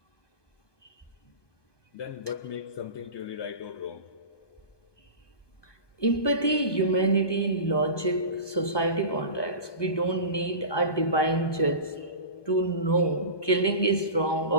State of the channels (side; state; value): right; late; 1.2 ms